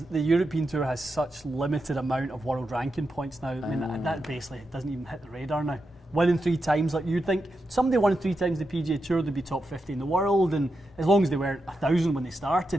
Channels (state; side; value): normal; both; correlation 0.87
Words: the European Tour has such limited amount of world ranking points now. I mean, that basically doesn't even hit the radar now. Winning 3 times, like you'd think somebody won 3 times the PGA Tour, they'd be top 50 in the world, and as long as they weren't 1,000 when they